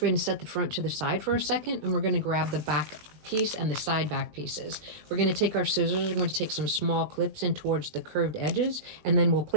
going to set the front to the side for a second, and we're going to grab the back piece and the side back pieces. We're going to take our scissors, we're going to take some small clips in towards the curved edges, and then we'll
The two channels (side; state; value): left; late; 20 ms